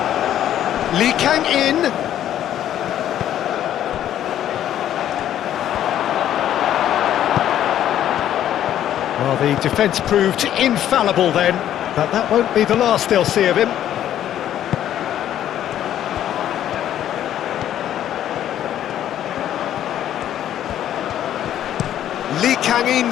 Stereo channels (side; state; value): right; quieter; 11.3 dB